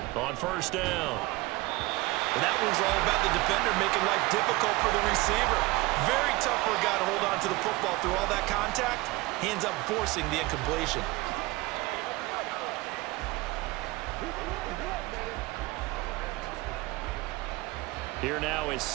on 1st down. And that was all about the defender making life difficult for the receiver. Very tough for a guy to hold on to the football through all that contact. He ends up forcing the incompletion. Here now is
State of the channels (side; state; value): left; quieter; 21.5 dB